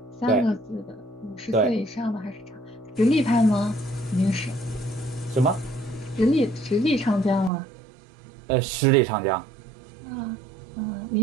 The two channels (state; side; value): drops out; left; at 7.5 s